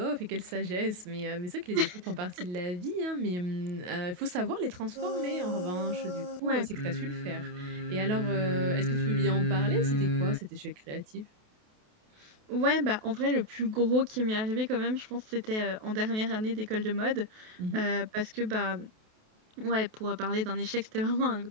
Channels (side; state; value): left; late; 28 ms